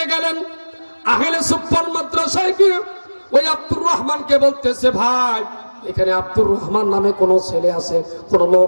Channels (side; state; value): both; inverted; correlation -1.00